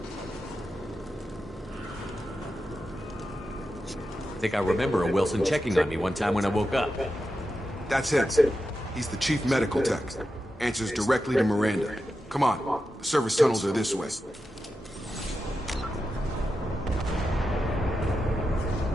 I think I remember a Wilson checking on me one time when I woke up. That's him. He's the chief medical tech. Answers directly to Miranda. Come on. The service tunnels are this way.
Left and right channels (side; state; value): both; normal; correlation 0.89